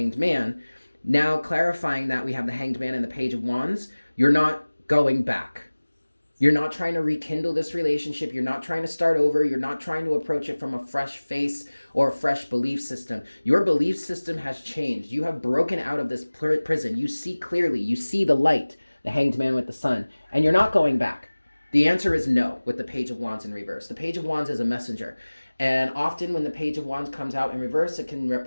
Man, now clarifying that we have the Hanged Man and the Page of Wands, you're not going back. You're not trying to rekindle this relationship. You're not trying to start over. You're not trying to approach it from a fresh face or a fresh belief system. Your belief system has changed. You have broken out of this prison. You see clearly. You see the light, the Hanged Man with the sun, and you're not going back. The answer is no with the Page of Wands in reverse. The Page of Wands is a messenger. And often when the Page of Wands comes out in reverse, it can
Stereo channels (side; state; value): both; inverted; correlation -1.00